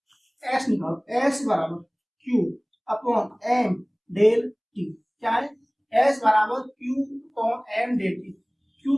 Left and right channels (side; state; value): both; identical; correlation 1.00